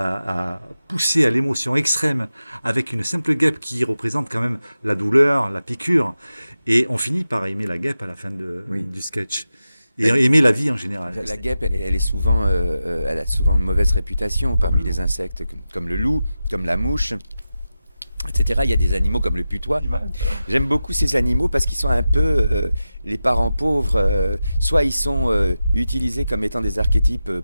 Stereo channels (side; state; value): both; inverted; correlation -0.92